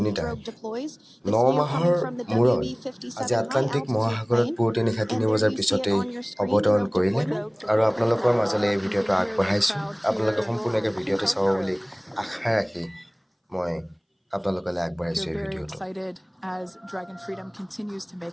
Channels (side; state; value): both; identical; correlation 1.00